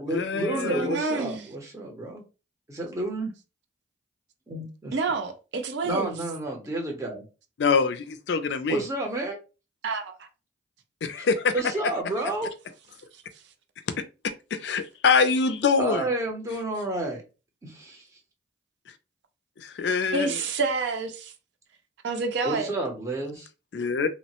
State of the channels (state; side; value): normal; both; correlation 0.06